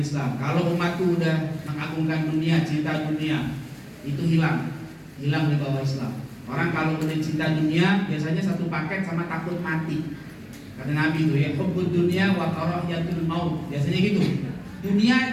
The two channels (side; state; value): both; identical; correlation 1.00